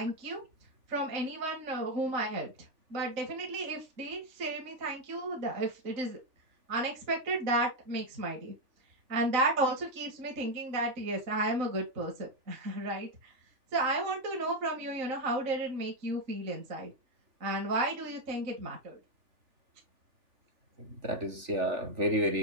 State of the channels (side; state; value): left; late; 3.4 ms